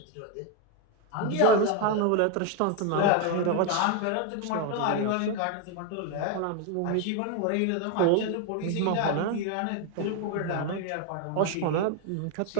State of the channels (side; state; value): both; different; correlation 0.01